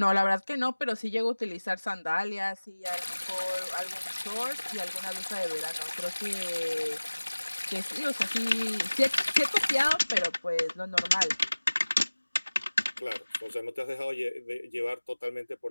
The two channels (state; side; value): inverted; both; correlation -1.00